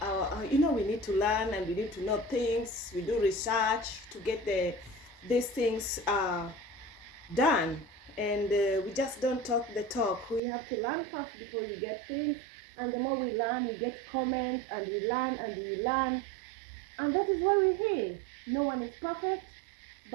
our, we need to learn and we need to know things. We do research to get these things done. And we just don't talk the talk. We have to learn first before we get things. And the more we learn, we get comments and we learn and we learn. And that is why we're here. No one is perfect,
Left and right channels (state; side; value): drops out; left; at 10.4 s